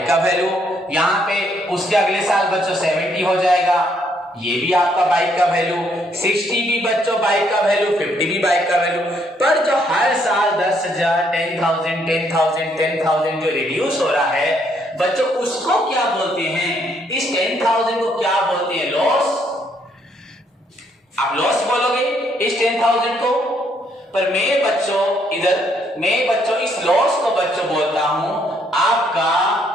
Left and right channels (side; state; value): both; normal; correlation 0.70